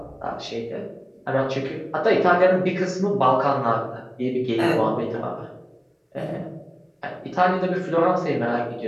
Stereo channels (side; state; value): both; identical; correlation 1.00